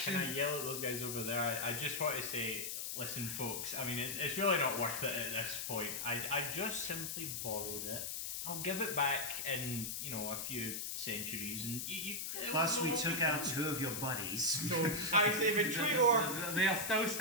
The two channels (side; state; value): left; noise; hiss, 4 dB below the sound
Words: yell at those guys over there? I just want to say, listen, folks. I mean, it's really not worth it at this point. I just simply borrowed it. I'll give it back in, a few centuries, and you Plus, we took out 2 of your buddies. So I say betray or They are still